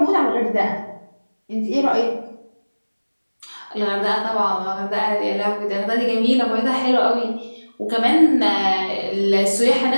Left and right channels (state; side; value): inverted; both; correlation -1.00